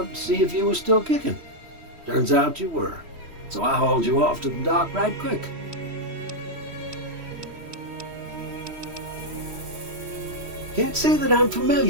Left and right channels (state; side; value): late; left; 3.1 ms